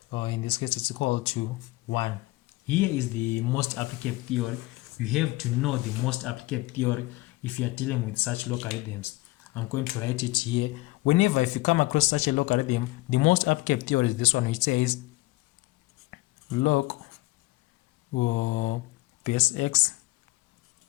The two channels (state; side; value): quieter; right; 20.4 dB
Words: In this case, it's equal to 1. Here is the most applicable theory. You have to know the most applicable theory if you are dealing with such logarithms. I'm going to write it here. Whenever if you come across such a logarithm, the most applicable theory is this one, which says log base x